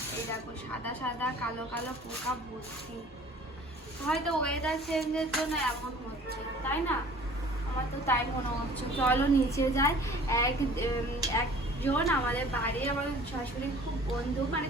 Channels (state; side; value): normal; both; correlation 0.49